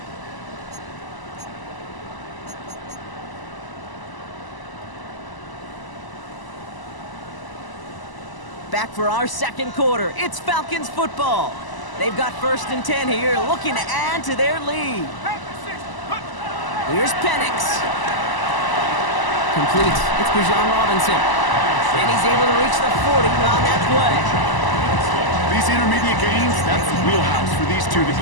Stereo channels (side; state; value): right; late; 1.0 ms